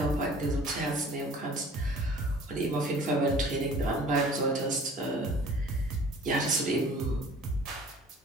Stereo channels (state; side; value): normal; both; correlation 0.49